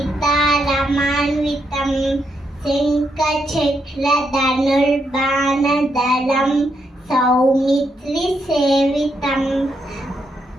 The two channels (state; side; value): normal; both; correlation 0.79